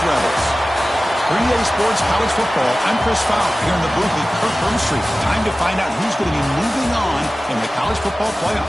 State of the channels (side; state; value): both; normal; correlation 0.96